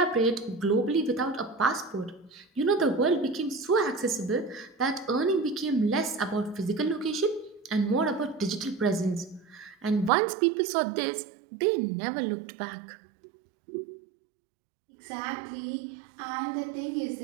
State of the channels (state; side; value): drops out; left; at 10.1 s